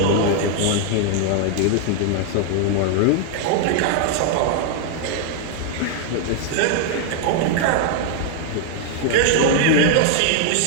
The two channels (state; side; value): different; both; correlation 0.00